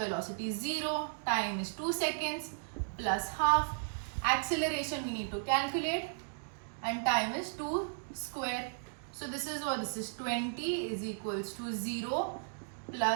is 0, time is 2 seconds plus half, acceleration we need to calculate, and time is 2 square. So this is what this is, 20 is equals to 0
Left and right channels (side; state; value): left; silent; digital silence